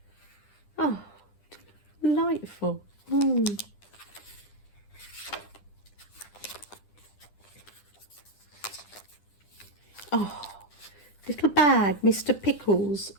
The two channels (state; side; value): late; right; 10 ms